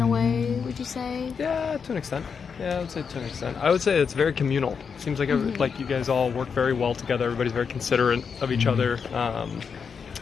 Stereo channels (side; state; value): right; quieter; 6.1 dB